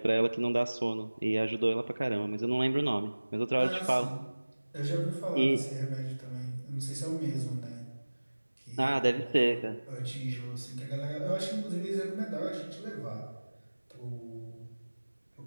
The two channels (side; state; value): both; inverted; correlation -1.00